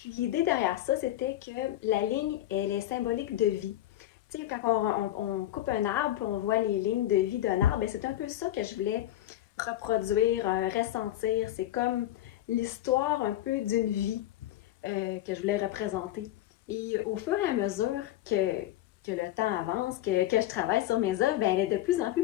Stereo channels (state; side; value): quieter; right; 13.8 dB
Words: l'idée derrière ça, c'était que la ligne, elle est symbolique de vie. Tu sais, quand on coupe un arbre, puis on voit les lignes de vie d'un arbre, c'est un peu ça que je voulais reproduire, ressentir. C'est comme l'histoire un peu d'une vie que je voulais représenter. Et au fur et à mesure que le temps avance, que je travaille sur mes œuvres, elle est de plus en